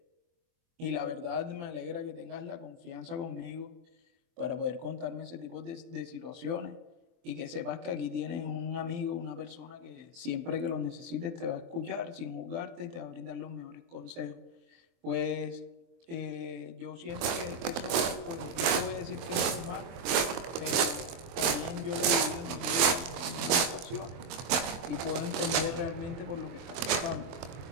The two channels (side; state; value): left; late; 24 ms